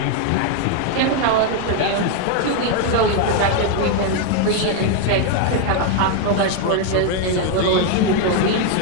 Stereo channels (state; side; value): different; both; correlation 0.01